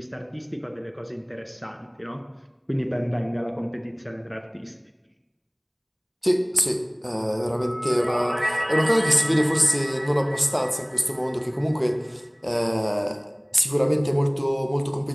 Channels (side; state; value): both; identical; correlation 1.00